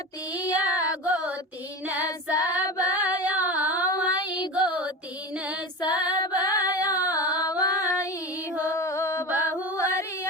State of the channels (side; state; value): both; normal; correlation 0.27